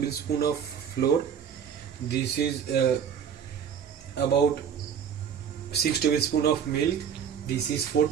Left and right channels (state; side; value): quieter; left; 7.8 dB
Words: of flour. This is about 6 tablespoon of milk. This is 4